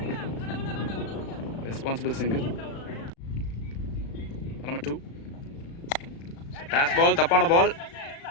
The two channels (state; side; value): late; right; 36 ms